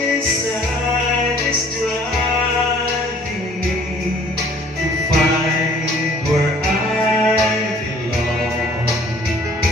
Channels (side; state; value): both; normal; correlation 0.55